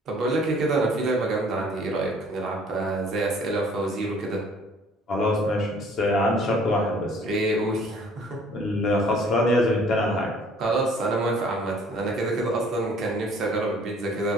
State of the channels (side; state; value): both; normal; correlation 0.56